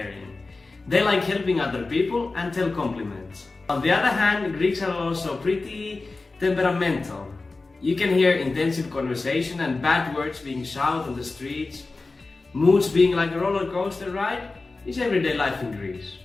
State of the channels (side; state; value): right; quieter; 3.6 dB